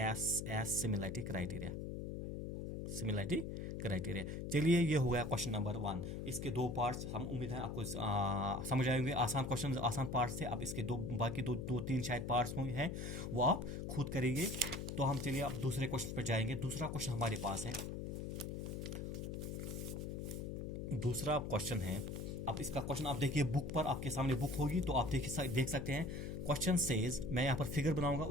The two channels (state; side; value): noise; left; hum, 5 dB below the sound